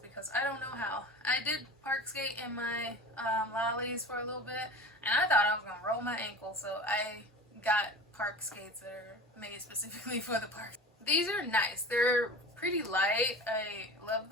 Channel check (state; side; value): normal; both; correlation 0.35